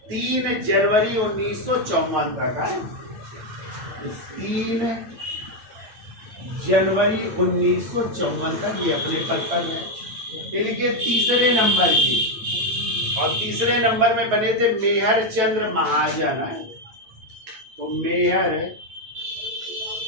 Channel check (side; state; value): left; late; 9.1 ms